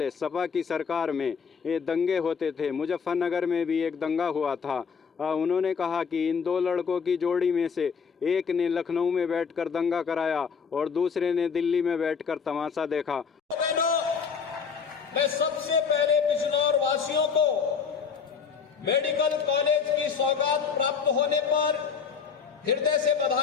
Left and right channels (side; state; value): right; quieter; 6.1 dB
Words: सपा की सरकार में ये दंगे होते थे। मुजफ्फरनगर में भी एक दंगा हुआ था। उन्होंने कहा कि इन दो लड़कों की जोड़ी में से एक ने लखनऊ में बैठकर दंगा कराया और दूसरे ने दिल्ली में बैठकर तमाशा देखा। मैं सबसे पहले बिजनौर वासियों को मेडिकल कॉलेज की सौगात प्राप्त होने पर हृदय से